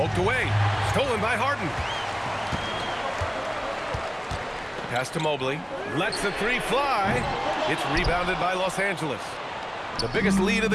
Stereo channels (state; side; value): identical; both; correlation 1.00